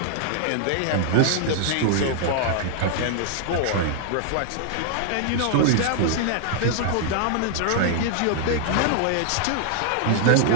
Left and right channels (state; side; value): different; both; correlation 0.00